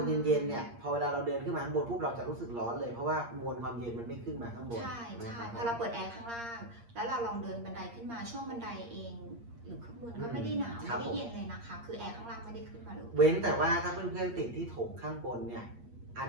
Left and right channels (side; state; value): left; late; 8.6 ms